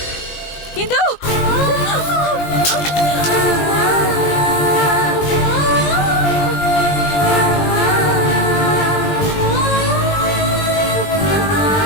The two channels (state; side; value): late; right; 20 ms